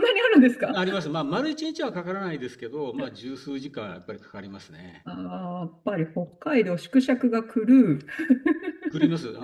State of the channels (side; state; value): both; identical; correlation 1.00